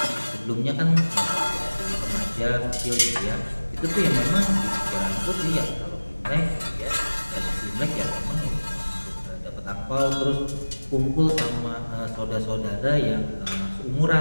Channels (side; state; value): both; inverted; correlation -1.00